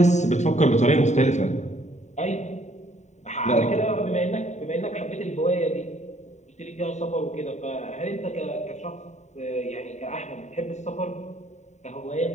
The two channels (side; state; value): right; late; 0.34 ms